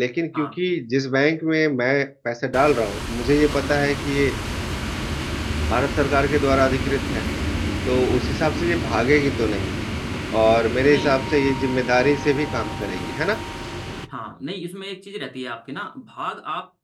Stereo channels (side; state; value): both; identical; correlation 1.00